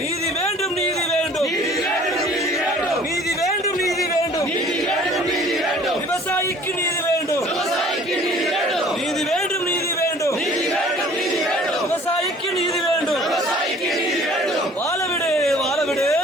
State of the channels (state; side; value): normal; both; correlation 0.51